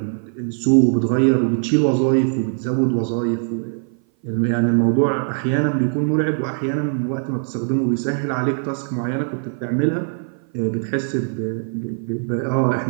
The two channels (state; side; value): silent; left; 58 dB below the other